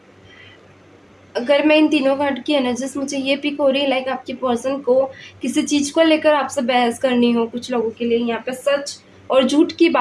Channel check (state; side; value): identical; both; correlation 1.00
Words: अगर मैं इन तीनों कार्ड की एनर्जीज, मुझे ये पिक हो रही है लाइक आपकी पर्सन को किसी चीज़ को लेकर आपसे बहस करनी हो। कुछ लोगों के लिए यहाँ पे सच और झूठ की